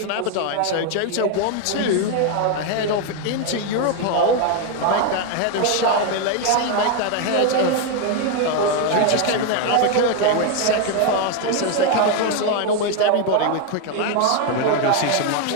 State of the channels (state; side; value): different; both; correlation 0.01